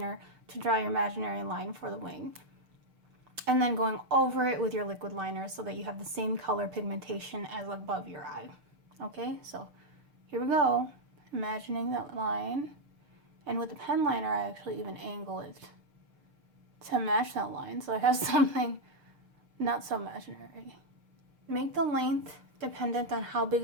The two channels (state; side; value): late; left; 6.5 ms